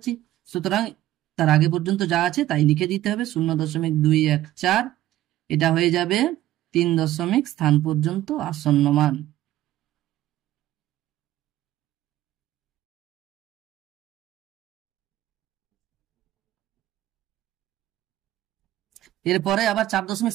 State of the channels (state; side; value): quieter; left; 14.4 dB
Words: সুতরাং তার আগে পর্যন্ত যা আছে তাই লিখে দিতে হবে 0.214। এটা হয়ে যাবে 3 দশমিক স্থান পর্যন্ত আসন্ন মান। এরপরে আবার 4 দশমিক